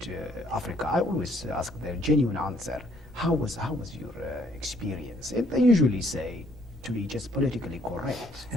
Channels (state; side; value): normal; both; correlation 0.64